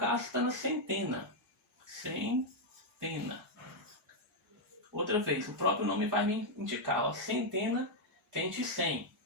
está na centena. Centena. Outra vez, o próprio nome vai me indicar, ó, centena vem de 100.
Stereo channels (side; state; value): both; normal; correlation -0.01